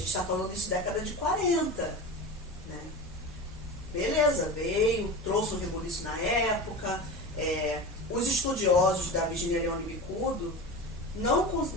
está falando disso década de 40, né? Beleza, veio, trouxe um rebuliço na época, os estudiosos da Virginia Leone Bicudo,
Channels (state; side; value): normal; both; correlation 0.29